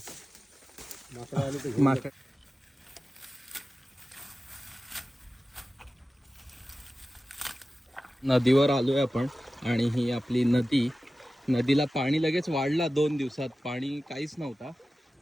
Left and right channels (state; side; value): normal; both; correlation 0.95